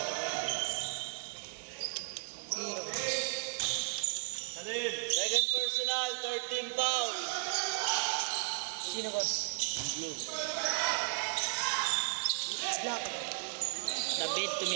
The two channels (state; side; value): silent; left; 55 dB below the other